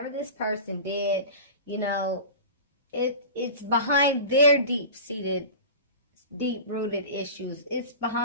this person did, it's behind their deep-seated, deep-rooted issues. It's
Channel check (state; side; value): inverted; both; correlation -0.33